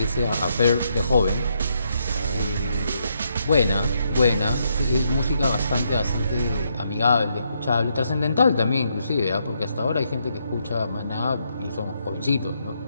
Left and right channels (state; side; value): inverted; both; correlation -0.77